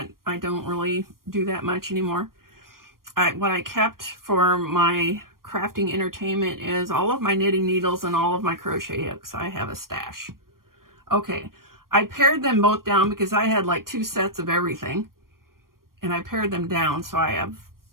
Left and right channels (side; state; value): left; late; 0.91 ms